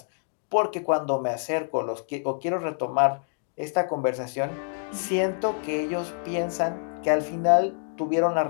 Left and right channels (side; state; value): right; silent; digital silence